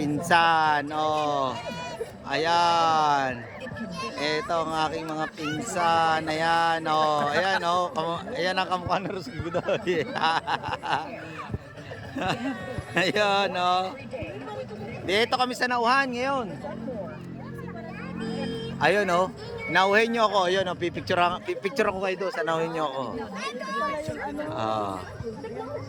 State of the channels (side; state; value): both; identical; correlation 1.00